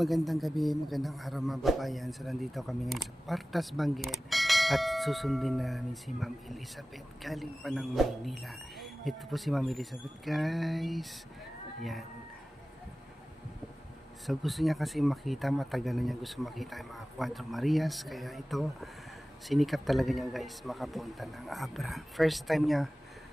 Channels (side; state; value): both; normal; correlation 0.97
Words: gabi, magandang araw mga babayan. So nandito kami ngayon sa Partas Benguet at susundin namin si Ma'am Elizabeth galing pa ng Maynila. Ito po si Ma'am Elizabeth, guys. Yan. So gusto niya kasi makita, matagal na niya gusto makita yung mga Cuatro Marias. Kaya ito, sinikap talaga niya, guys, makapunta ng Abra. First time niya